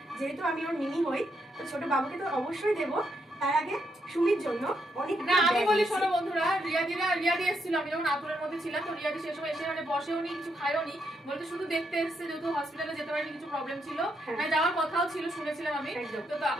যেহেতু আমি ওর মিনি হই, তো ছোট বাবুকে তো অবশ্যই দেবো। তার আগে সুমির জন্য অনেক না আমি বলি শোনো বন্ধুরা, রিয়াদি এসেছিল, আমি যখন আতুরের মধ্যে ছিলাম, তো রিয়াদি সেই সময় এসে মানে বসেও নি, কিছু খায়ও নি, বলতে শুধু দেখতে এসেছে, যেহেতু হসপিটালে যেতে পারিনি, কিছু প্রবলেম ছিল, মানে যাওয়ার কথাও ছিল, শুনেছিলাম আমি। তো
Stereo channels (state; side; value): normal; both; correlation 0.79